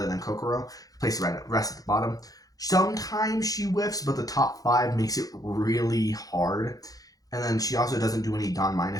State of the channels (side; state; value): right; late; 0.17 ms